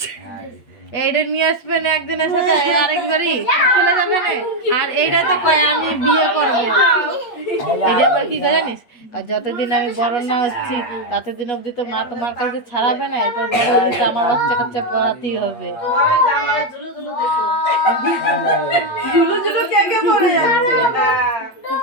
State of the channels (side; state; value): right; late; 8.6 ms